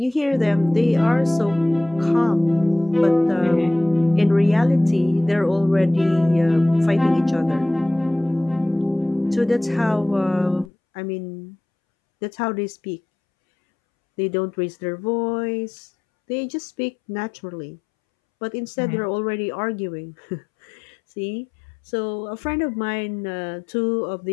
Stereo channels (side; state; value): right; drops out; at 10.7 s